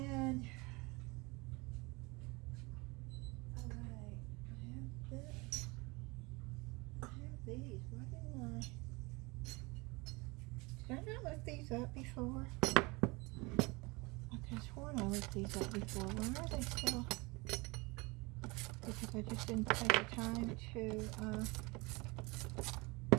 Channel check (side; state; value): left; quieter; 25.7 dB